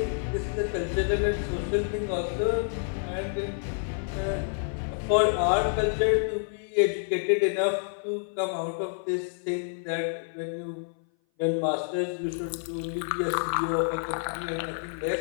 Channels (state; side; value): silent; right; 57 dB below the other